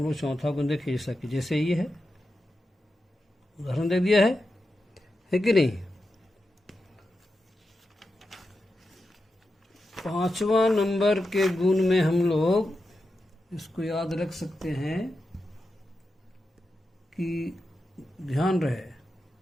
लोग चौथा गुण देखें, जैसा कि जैसे ये है, उदाहरण दे दिया है कि नहीं। पांचवा नंबर के गुण में हम लोग इसको याद रख सकते हैं कि ध्यान रहे,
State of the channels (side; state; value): both; normal; correlation 0.89